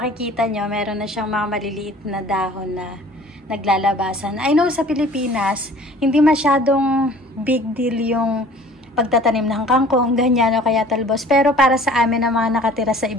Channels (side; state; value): both; normal; correlation 0.49